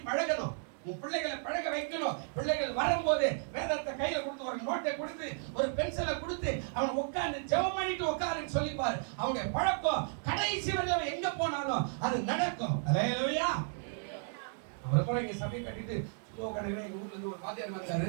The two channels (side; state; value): left; silent; 55 dB below the other